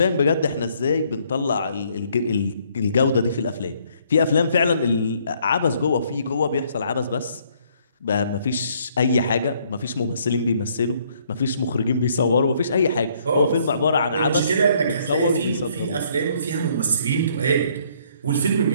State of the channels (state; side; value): inverted; both; correlation -0.66